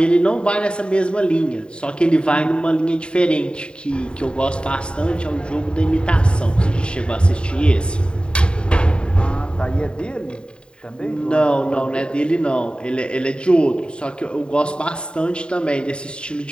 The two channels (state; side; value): late; right; 0.051 ms